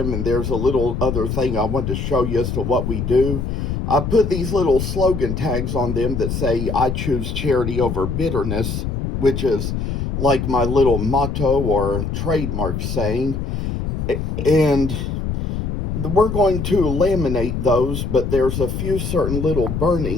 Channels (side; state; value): left; noise; rumble, 3 dB below the sound